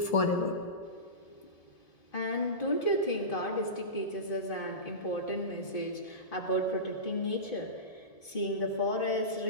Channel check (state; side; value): late; right; 1.7 ms